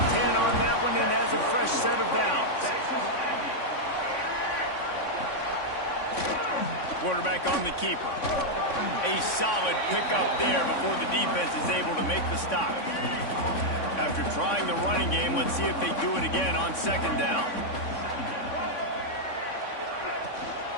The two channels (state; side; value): late; right; 3.5 ms